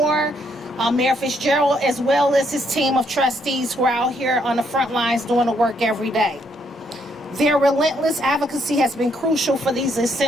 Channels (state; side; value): normal; both; correlation 0.72